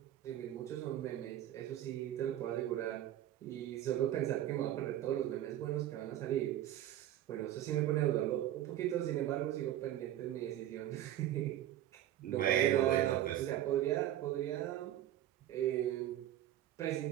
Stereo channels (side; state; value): left; quieter; 12.5 dB